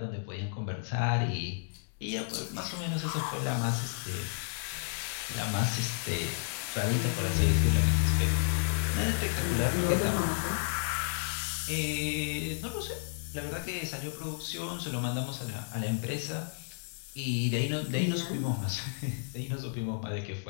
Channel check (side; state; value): right; silent; digital silence